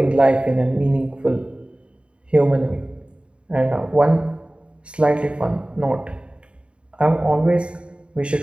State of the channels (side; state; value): left; late; 0.056 ms